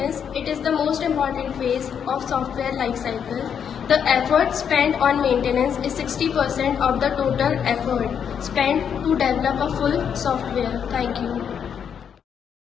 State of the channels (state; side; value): quieter; right; 7.8 dB